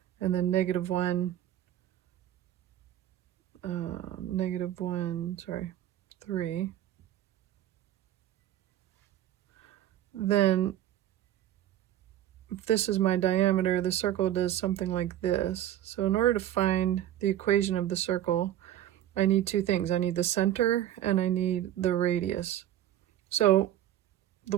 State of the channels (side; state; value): left; quieter; 12.2 dB